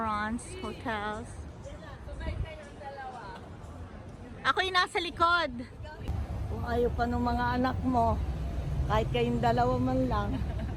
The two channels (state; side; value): identical; both; correlation 1.00